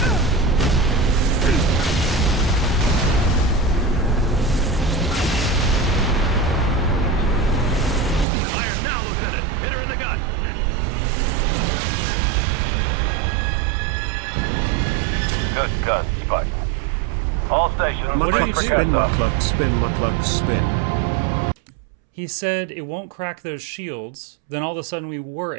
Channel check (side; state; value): left; drops out; at 8.2 s